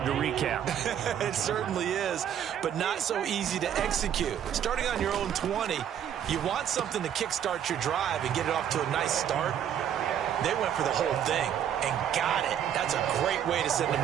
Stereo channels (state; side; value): quieter; left; 9.5 dB